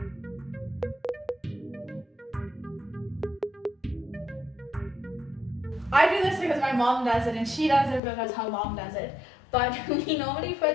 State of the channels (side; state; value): right; drops out; at 8.0 s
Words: I do this because my mom does it and she does it because her mom does it. But we normally